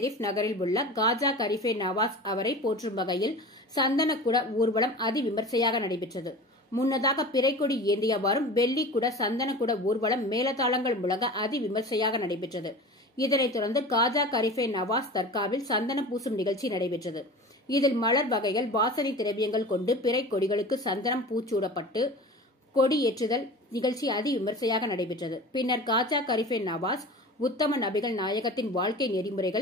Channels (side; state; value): both; normal; correlation 0.35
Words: நகரில் உள்ள காஜா கரிஃபே நவாஸ் அவரை போற்றும் வகையில் சந்தனக்கூட ஊர்வலம் அதிவிமர்சையாக நடைபெற்றது. முன்னதாக பிறைக்கொடி ஏந்தியவாறும் வெள்ளிக்குட சந்தனக்கூட ஊர்வலம் மேலதாளங்கள் முழங்க அதிவிமர்சையாக நடைபெற்றது. இதனைத் தொடர்ந்து காஜா கரிஃபே நவாஸ் தர்காவில் சந்தனம் பூசும் நிகழ்ச்சி நடைபெற்றது. இதில் மலர் வகைகள், வாசனை திரவியங்கள் கொண்டு பிறை கொடிகளுக்கு சந்தனம் பூச்சூடப்பட்டு கொடியேற்றுதல் நிகழ்ச்சி அதிவிமர்சையாக நடைபெற்றது. பின்னர் காஜா கரிஃபே நவாஸ் உத்தம நபிகள் நாயகத்தின் வாழ்க்கை